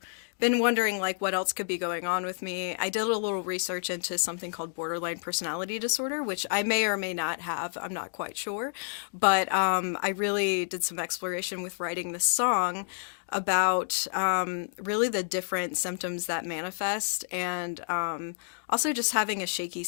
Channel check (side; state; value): right; silent; digital silence